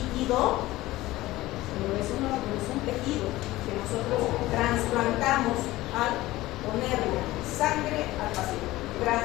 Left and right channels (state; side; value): quieter; right; 17.6 dB